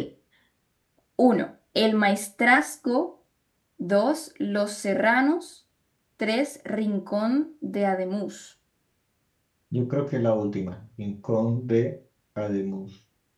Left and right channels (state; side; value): identical; both; correlation 1.00